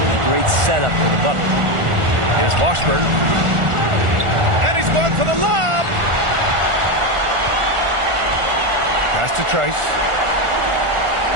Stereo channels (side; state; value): left; late; 1.4 ms